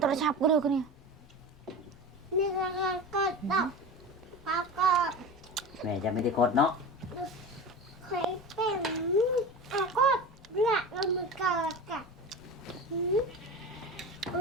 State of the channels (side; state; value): left; noise; rumble, 27 dB below the sound